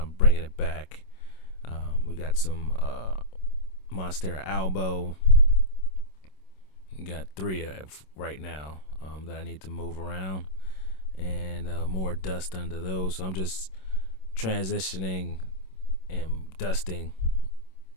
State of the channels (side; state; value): right; late; 27 ms